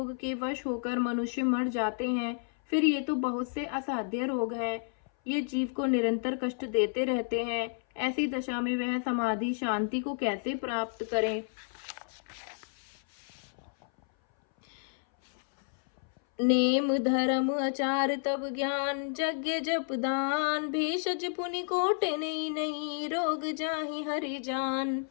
के वश होकर मनुष्य मर जाते हैं, फिर ये तो बहुत से असाध्य रोग हैं। ये जीव को निरंतर कष्ट देते रहते हैं। ऐसी दशा में वह समाधि शांति को कैसे प्राप्त करें। नेम धर्म आचार तब ज्ञान, यज्ञ जप दान। भेषज पुनि कोटि नहीं, रोग जाहि हरि जान।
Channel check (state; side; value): silent; right; 57 dB below the other